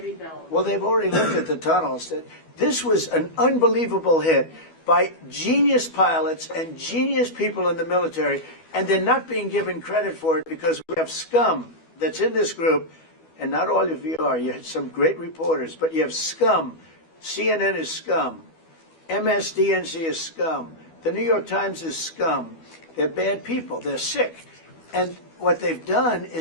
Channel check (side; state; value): right; late; 12 ms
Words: Well, they've already looked at the tunnels. This was an unbelievable hit by genius pilots and genius people in the military. And they're not being given credit for it because we have scum that's in this group, and not all of you are. You have some great reporters, but you have scum. CNN is scum. MSDNC is scum. The New York Times is scum. They're bad people. They're sick. And what they've done